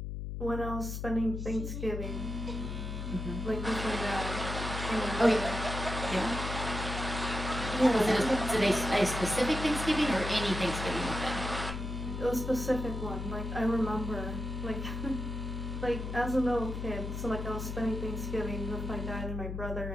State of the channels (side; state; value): left; noise; hum, 5 dB below the sound